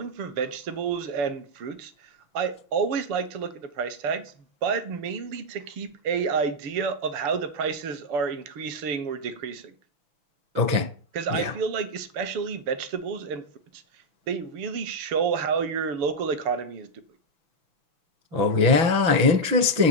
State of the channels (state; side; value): late; left; 6.1 ms